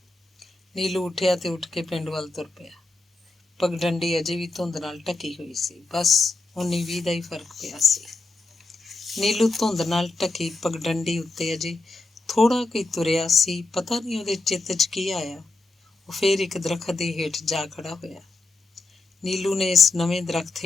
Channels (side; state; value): right; quieter; 3.2 dB